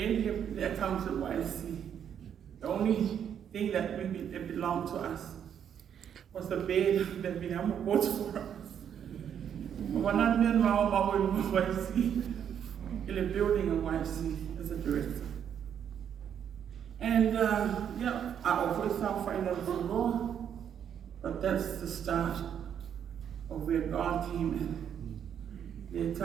the accounts of YC. The only thing that belonged to us was the bed that Viliamu bought for us. When I met Mafo'e in YC, in a building in YC as a director. And I always found financial law, but that's the start of where God came in. The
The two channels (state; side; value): quieter; left; 8.7 dB